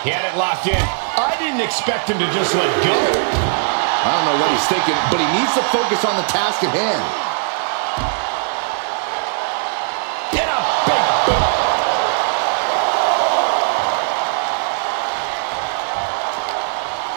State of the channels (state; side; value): silent; left; 67 dB below the other